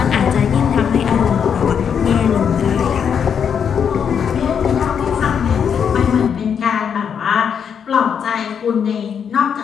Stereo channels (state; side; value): quieter; right; 7.5 dB